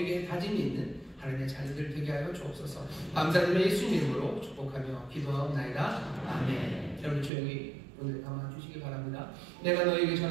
다짐이 있는 하나님의 자녀들 되게 하여 주옵소서. 감사드리며 예수님 이름으로 축복하며 기도하옵나이다. 아멘. 여러분 조용히 오늘 담아주시기 바랍니다. 내가 너에게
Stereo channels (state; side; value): drops out; left; at 7.3 s